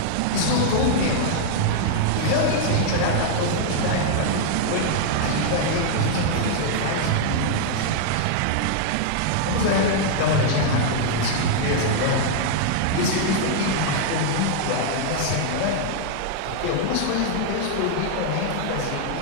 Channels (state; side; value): different; both; correlation -0.01